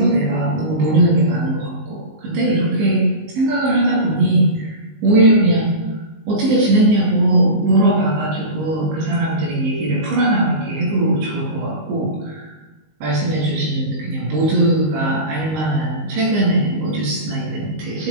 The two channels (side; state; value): left; late; 19 ms